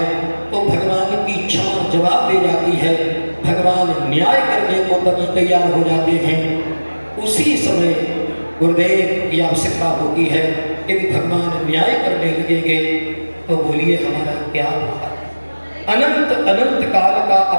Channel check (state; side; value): inverted; both; correlation -1.00